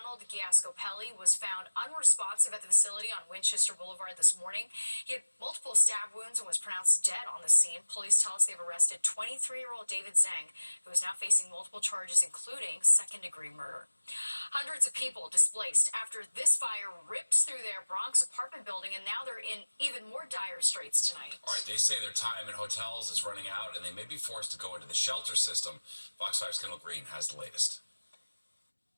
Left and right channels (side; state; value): both; inverted; correlation -1.00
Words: Giascopelli was found unresponsive at the facility on Winchester Boulevard this morning. He had multiple stab wounds and was pronounced dead on the scene. Police tell us they've arrested 23-year-old David Zhang, who is now facing multiple charges, including second-degree murder. Hundreds of people displaced after this fire ripped through their Bronx apartment building, and now they're in even more dire straits tonight. All right, they say their time in hotels is running out, and they may be forced to go into the shelter system. Fox 5's Kendall Green has the latest.